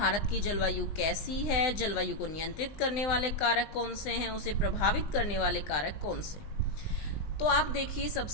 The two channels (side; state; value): right; late; 20 ms